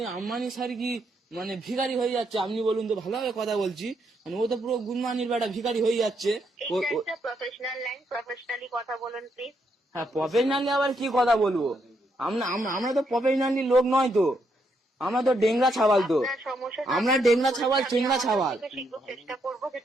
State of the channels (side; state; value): both; normal; correlation 0.77